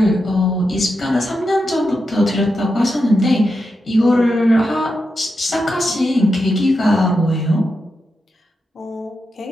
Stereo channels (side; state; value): both; normal; correlation 0.87